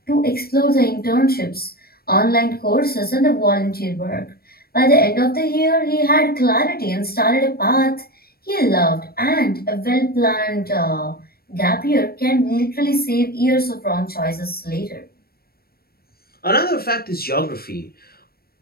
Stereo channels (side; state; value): right; late; 0.44 ms